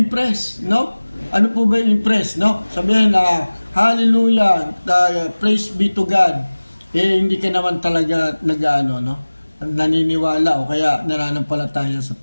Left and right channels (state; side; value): inverted; both; correlation -1.00